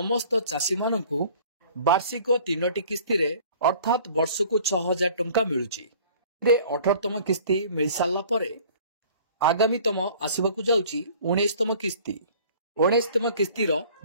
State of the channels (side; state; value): both; inverted; correlation -0.50